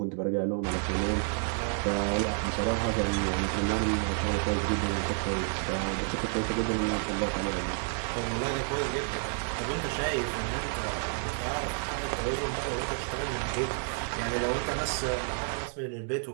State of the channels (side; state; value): left; silent; 58 dB below the other